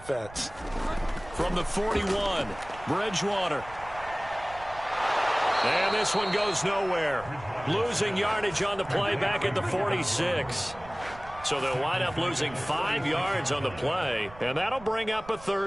From the 41, Bridgewater. And this one goes nowhere. Losing yardage on the play back at the 46. So they'll wind up losing 5 yards on the play, and that'll bring up a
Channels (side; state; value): right; noise; rumble, 18 dB below the sound